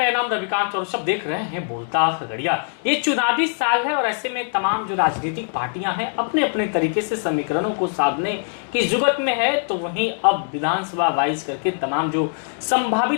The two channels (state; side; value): silent; right; 64 dB below the other